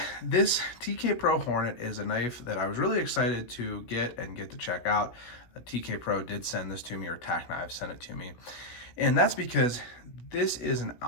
this TK Pro Hornet is a knife that I was really excited to get to check out. TK Pro did send this to me, or Tack Knives sent it to me. And that's because this is an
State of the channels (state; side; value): late; right; 17 ms